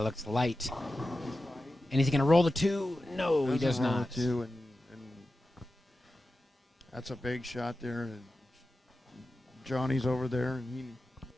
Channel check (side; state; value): both; normal; correlation 0.93